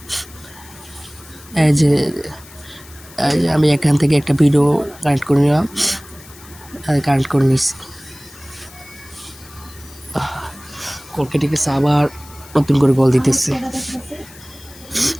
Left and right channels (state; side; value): noise; left; hiss, 21 dB below the sound